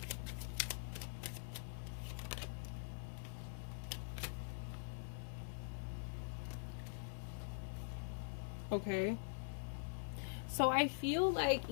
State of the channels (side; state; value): right; silent; digital silence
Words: Okay. So I feel like